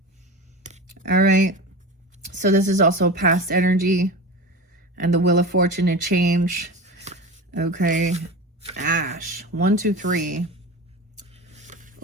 All right. So this is also past energy and the wheel of fortune and change. Okay. Ash. 1, 2, 3.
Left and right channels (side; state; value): both; normal; correlation 0.29